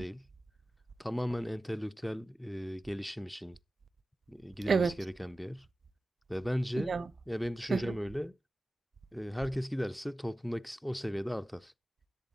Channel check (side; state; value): both; normal; correlation 0.95